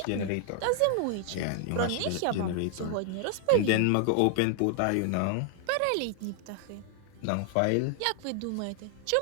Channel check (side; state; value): both; different; correlation 0.00